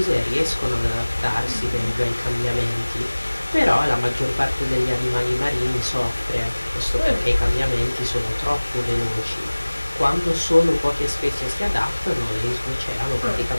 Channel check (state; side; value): inverted; both; correlation -1.00